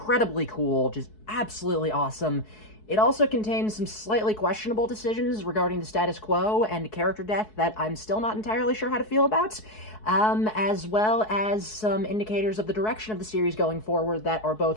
cool, just absolutely awesome. It also contains some slightly questionable decisions regarding the status quo and character death that I'm still not entirely sure how to feel about, as well as some indicators of the direction of the series going forward that are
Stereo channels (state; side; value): late; right; 4.7 ms